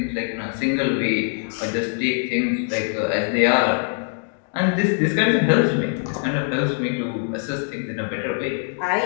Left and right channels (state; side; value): silent; right; 58 dB below the other